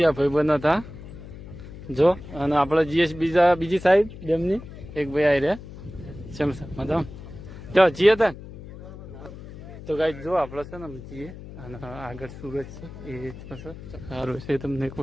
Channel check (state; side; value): noise; left; hum, 14 dB below the sound